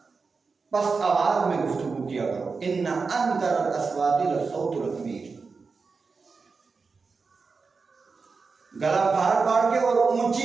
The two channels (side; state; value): left; quieter; 4.7 dB